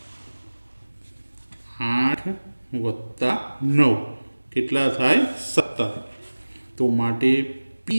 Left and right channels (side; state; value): both; inverted; correlation -1.00